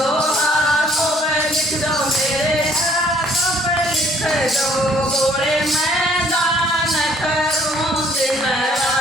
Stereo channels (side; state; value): both; normal; correlation 0.61